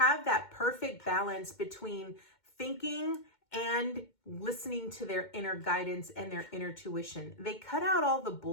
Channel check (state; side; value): late; right; 2.2 ms